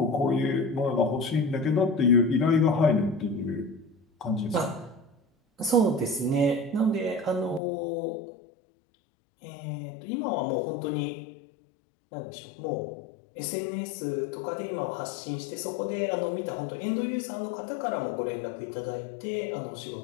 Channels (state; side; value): drops out; right; at 7.6 s